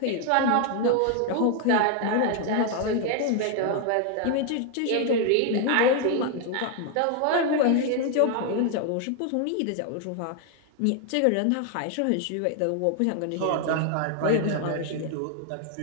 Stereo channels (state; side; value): different; both; correlation 0.00